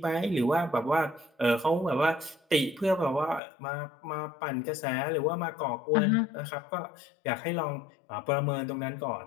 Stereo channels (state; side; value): drops out; right; at 3.4 s